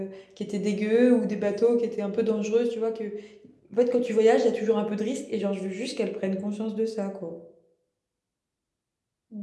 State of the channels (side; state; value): both; identical; correlation 1.00